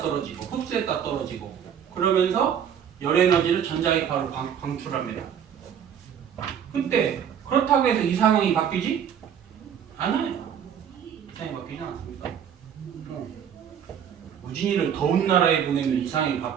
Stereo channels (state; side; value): quieter; left; 8.6 dB